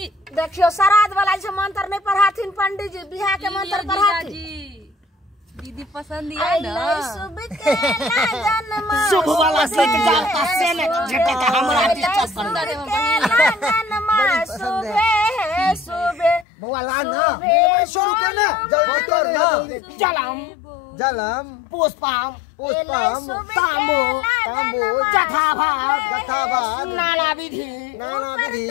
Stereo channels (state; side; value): drops out; right; at 16.4 s